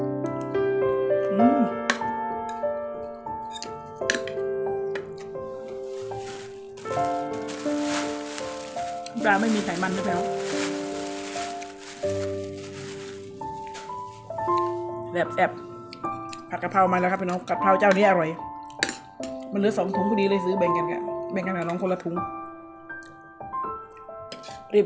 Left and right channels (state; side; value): identical; both; correlation 1.00